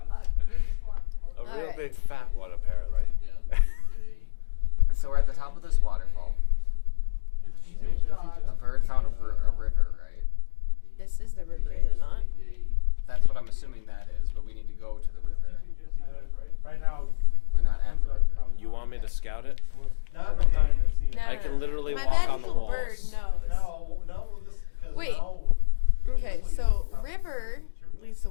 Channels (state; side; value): silent; right; digital silence